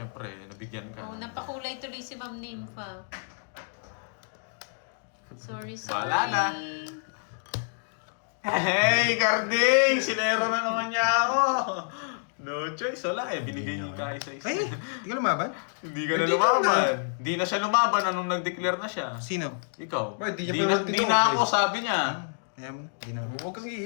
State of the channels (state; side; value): silent; right; digital silence